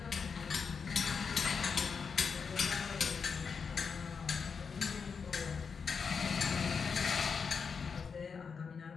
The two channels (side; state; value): right; quieter; 5.8 dB